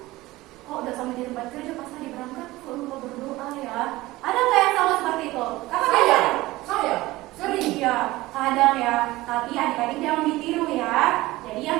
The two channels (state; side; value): quieter; left; 18.7 dB